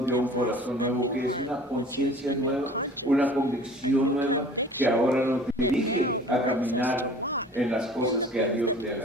dio un corazón nuevo, que es una conciencia nueva, una convicción nueva, que ahora nos dirige a caminar en las cosas que a Dios le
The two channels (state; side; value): normal; both; correlation 0.46